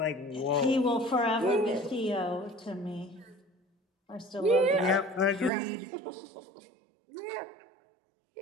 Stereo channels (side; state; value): left; drops out; at 5.5 s